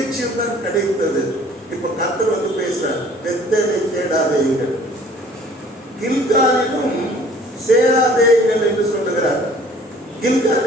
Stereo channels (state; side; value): normal; both; correlation 0.53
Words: தான் கிடைத்தது. இப்ப கர்த்தர் வந்து பேசுறார், பெத்தேலை தேடாதீர்கள், கில்காலிலும் சேராதேங்கள் என்று சொல்லுகிறார்.